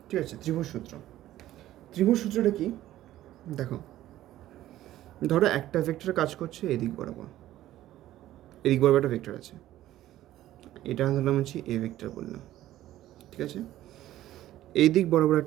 ঠিক আছে, ত্রিভুজ সূত্র। ত্রিভুজ সূত্রটা কি দেখো, ধরো একটা ভেক্টর কাজ করছে এদিক বরাবর, এদিক বরাবর একটা ভেক্টর আছে, এটা ধরলাম হচ্ছে এ ভেক্টর বললাম, ঠিক আছে। এই দিক বরাবর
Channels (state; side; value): quieter; left; 14.0 dB